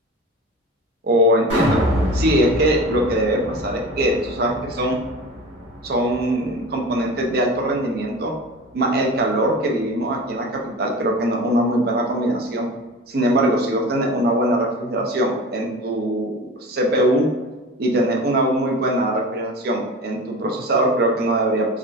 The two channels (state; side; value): normal; both; correlation 0.34